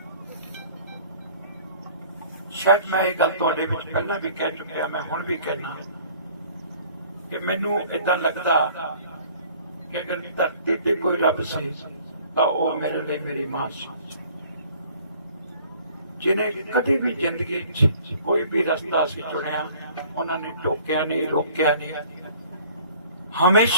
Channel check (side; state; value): both; inverted; correlation -0.53